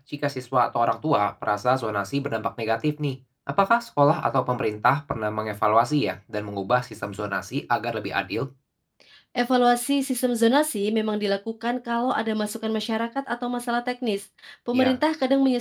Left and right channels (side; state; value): both; identical; correlation 1.00